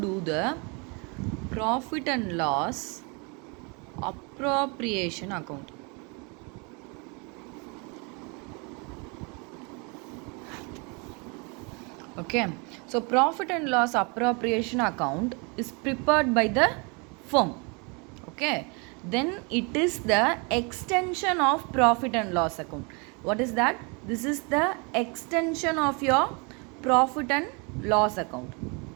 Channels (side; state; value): left; quieter; 31.7 dB